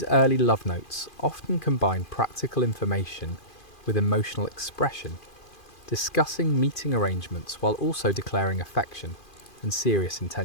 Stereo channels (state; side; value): late; right; 2.5 ms